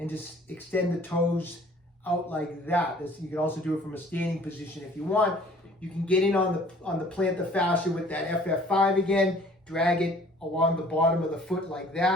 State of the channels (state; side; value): normal; both; correlation 0.53